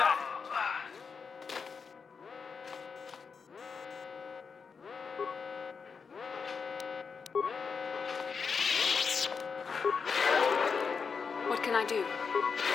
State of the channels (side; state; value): right; quieter; 5.6 dB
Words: What can I do?